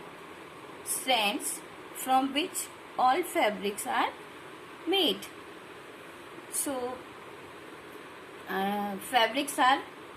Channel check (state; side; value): identical; both; correlation 1.00